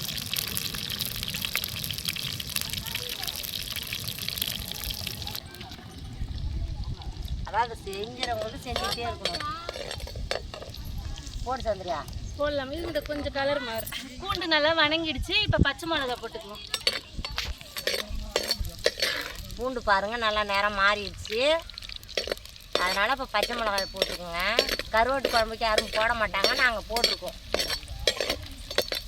அதாவது செஞ்சுறவங்களுக்கு செஞ்சுக்கிட்டே இருக்கணும். போட்டு சந்திரியா போடலாம். இது கொஞ்சம் கலர் மாறு. பூண்டு நல்லா வணங்கிடுச்சு. இப்போ பச்சை மிளகா போட்டுக்குவோம். பூண்டு பாருங்க நல்லா நேரம் மாறிடுச்சு. அதனால இப்போ பச்சை மிளகாய் போட்டுக்கோங்க. கருவாட்டு குழம்புக்கு யாரும் போட மாட்டாங்க, நாங்கள் போட்டிருக்கோம்.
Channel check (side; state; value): both; identical; correlation 1.00